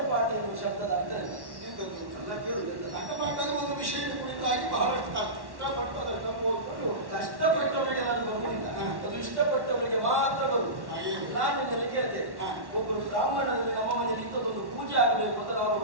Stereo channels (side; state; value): left; late; 1.1 ms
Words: ಎನ್ನುವ ಶಬ್ದದ ಅರ್ಥ ಎಂತದ್ದು? ಎಲ್ಲ ಕೇಳುದು. ಗಂಟಪಾಠದ ಒಂದು ವಿಷಯದ ಕುರಿತಾಗಿ ಬಹಳಷ್ಟು ಕಷ್ಟಪಟ್ಟದಷ್ಟು ಓದ್ಕೊಂಡು ಕಷ್ಟಪಟ್ಟವರಿಗೆ ನಾನು ಬರುವುದಿಲ್ಲ, ಅದು ಇಷ್ಟಪಟ್ಟವರಿಗೆ ಮಾತ್ರ ಬರುವುದು. ನಾನು ನಿಮ್ಮನ್ನು ಕೇಳ್ತೇನೆ, ಒಬ್ಬರು ಬ್ರಾಹ್ಮಣರಲ್ಲಿ ನಮ್ಮ ಮನೆಯಲ್ಲಿ ಇಂಥದ್ದೊಂದು ಪೂಜೆ ಆಗಬೇಕು ಅಂತ ನಾವು